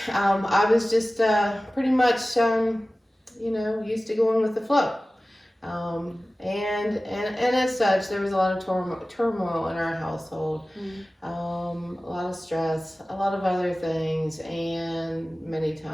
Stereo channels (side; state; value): both; normal; correlation 0.97